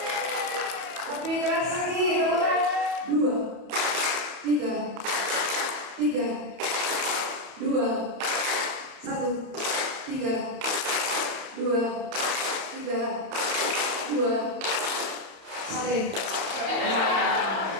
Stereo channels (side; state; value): left; late; 30 ms